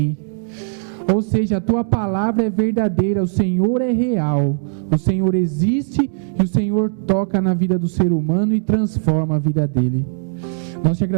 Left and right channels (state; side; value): silent; left; digital silence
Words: Ou seja, a tua palavra é verdadeira, o Senhor é real, o Senhor existe e o Senhor toca na vida do ser humano e transforma a vida dele. Nós te